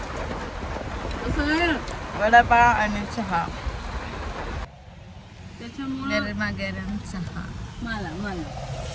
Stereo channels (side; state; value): both; identical; correlation 1.00